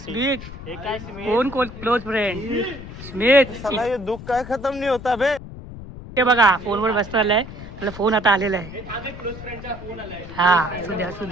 हे काय स्मित? कोण क्लोज फ्रेंड? स्मित. साला ये दुःख काय खतम नाही होता बे. ते बघा फोनवर बसतो आलाय. त्याला फोन आता आलेला आहे. हा असू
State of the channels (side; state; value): left; noise; rumble, 13 dB below the sound